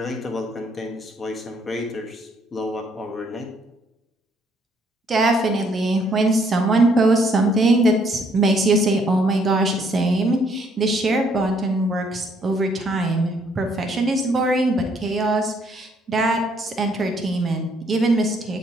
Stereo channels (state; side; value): normal; both; correlation 0.67